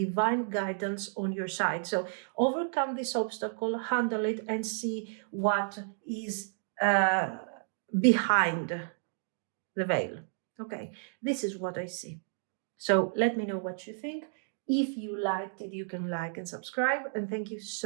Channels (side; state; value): left; silent; digital silence